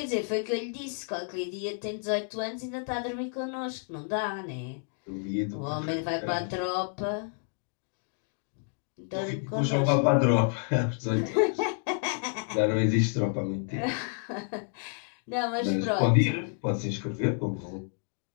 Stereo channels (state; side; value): silent; right; 56 dB below the other